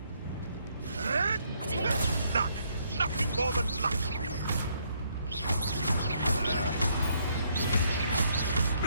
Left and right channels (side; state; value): both; inverted; correlation -0.70